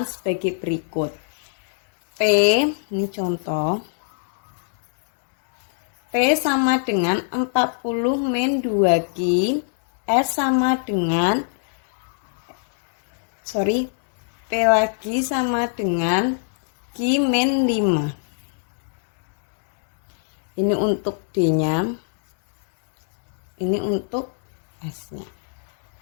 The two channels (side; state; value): right; silent; digital silence